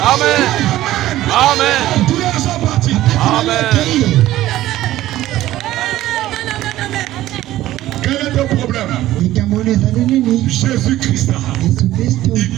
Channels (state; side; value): quieter; left; 14.9 dB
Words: Amen. Amen. Douleurs sont parties. Amen. Quel est ton problème? Jésus-Christ, il